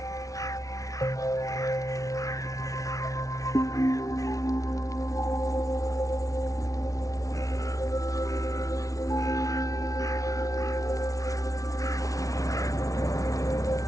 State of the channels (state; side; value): late; right; 0.17 ms